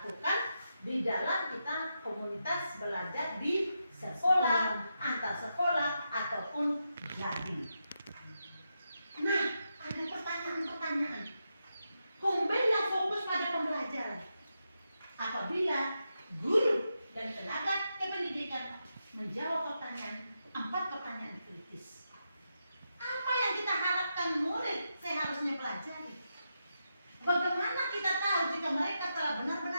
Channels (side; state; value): both; inverted; correlation -0.86